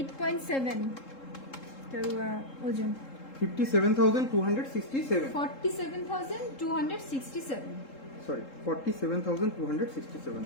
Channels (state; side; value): late; right; 3.7 ms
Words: এটার ওজন 57,267। 47,267। সরি, 47,267।